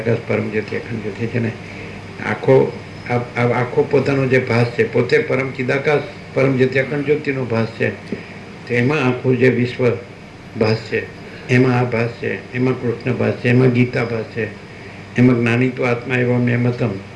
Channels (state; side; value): identical; both; correlation 1.00